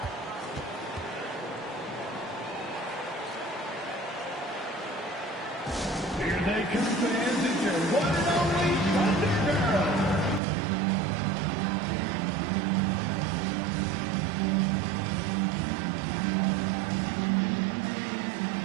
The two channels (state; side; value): drops out; left; at 10.4 s